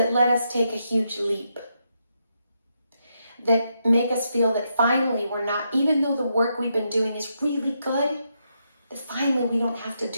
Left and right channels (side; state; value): both; inverted; correlation -0.81